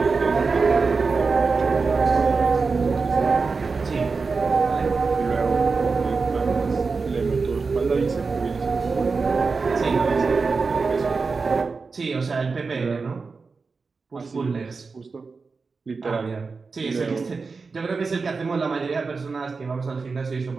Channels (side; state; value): left; quieter; 4.5 dB